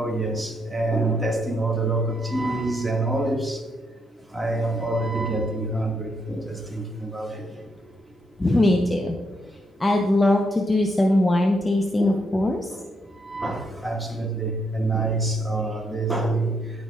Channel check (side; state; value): both; normal; correlation 0.77